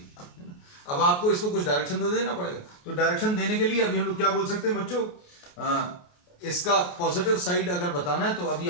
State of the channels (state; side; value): late; right; 28 ms